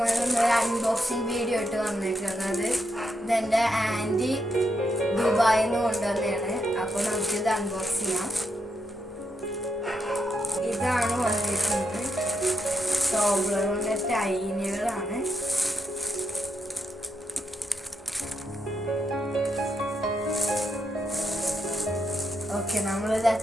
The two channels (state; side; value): normal; both; correlation 0.82